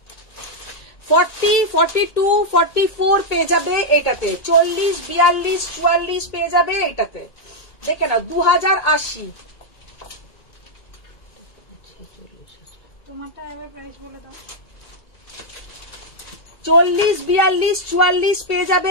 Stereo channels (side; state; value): right; late; 2.2 ms